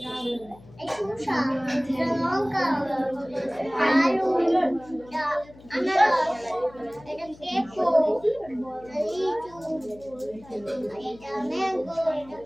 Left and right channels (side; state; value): left; noise; hum, 22 dB below the sound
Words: লঙ্কা, আলু, আনারস, এটা পেঁপো, লিচু, এটা ম্যাঙ্গো, এটা